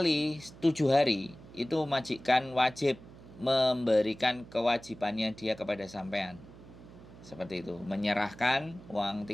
7 hari itu majikan wajib memberikan kewajibannya dia kepada sampean. Seperti itu, menyerahkan uang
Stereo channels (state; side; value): noise; right; hum, 19 dB below the sound